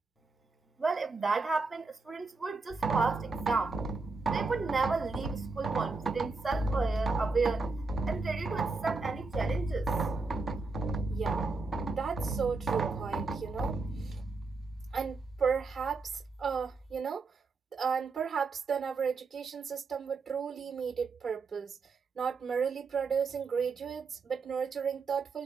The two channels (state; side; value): quieter; left; 4.1 dB